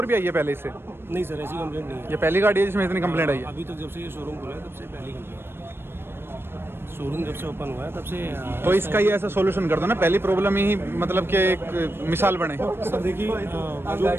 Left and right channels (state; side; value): late; left; 0.11 ms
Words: भी आई है पहले इससे? नहीं सर, ऐसी कंप्लेंट नहीं है। ये पहली गाड़ी है जिसमें इतनी कंप्लेंट आई है? अभी तक जब से ये शोरूम खुला है तब से पहली कंप्लेंट। शोरूम जब से ओपन हुआ है तब से तो इसका ये ऐसा सॉल्यूशन कर दो ना, पहली प्रॉब्लम ही मतलब कि एक मिसाल बने। सर देखिए जो